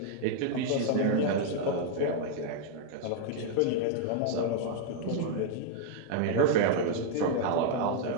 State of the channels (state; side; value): different; both; correlation 0.00